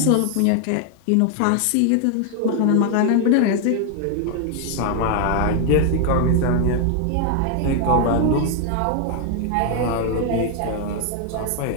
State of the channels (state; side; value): different; both; correlation 0.00